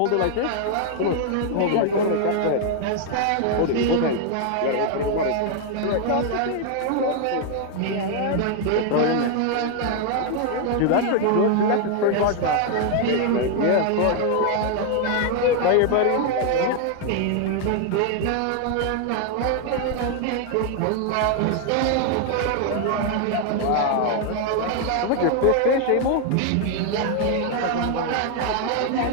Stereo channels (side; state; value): both; different; correlation 0.00